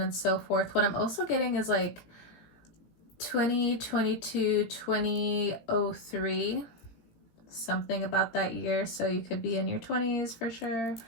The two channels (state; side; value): late; right; 17 ms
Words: and so forth. What I'm also getting is like 2022, 2003, something about that year. So you could be in your 20s for sure,